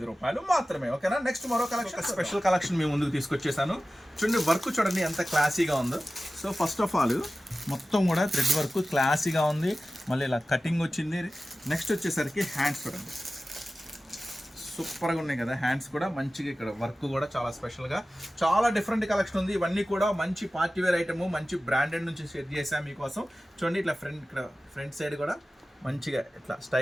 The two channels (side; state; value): both; normal; correlation 0.95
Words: రూపాయలు మాత్రమే. ఓకేనా, నెక్స్ట్ మరో కలెక్షన్, స్పెషల్ కలెక్షన్ మీ ముందుకు తీసుకొచ్చేసాను. చూడండి వర్క్ చూడండి ఎంత క్లాసీగా ఉందో. సో ఫస్ట్ ఆఫ్ ఆల్ మొత్తం కూడా థ్రెడ్ వర్క్ క్లాసీగా ఉంది, మళ్ళీ ఇలా కటింగ్ వచ్చింది. నెక్స్ట్ వచ్చేసరికి హ్యాండ్స్ చూడండి, సూపర్గా ఉన్నాయి కదా హ్యాండ్స్ కూడా మంచిగా. ఇక్కడ వర్క్ కూడా చాలా స్పెషల్గా, చాలా డిఫరెంట్ కలెక్షన్ ఉంది. ఇవన్నీ కూడా మంచి పార్టీ వేర్ ఐటమ్, మంచి బ్రాండెడ్ నుంచి సెట్ చేసాం మీకోసం. చూడండి ఇట్లా ఫ్రంట్ సైడ్ కూడా మంచిగా ఇట్లా